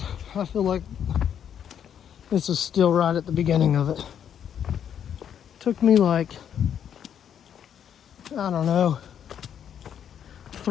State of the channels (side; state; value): right; quieter; 8.9 dB